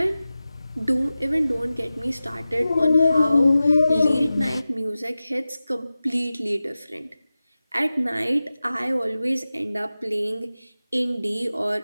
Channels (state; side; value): inverted; both; correlation -0.95